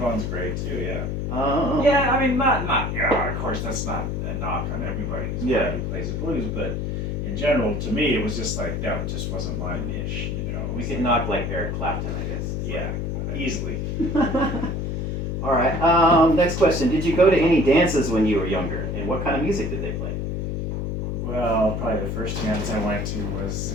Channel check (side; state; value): left; noise; hum, 2 dB below the sound